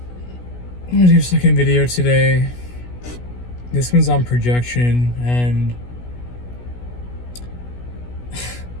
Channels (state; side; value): late; right; 16 ms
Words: I'm gonna do a second video today. This one's on projection, and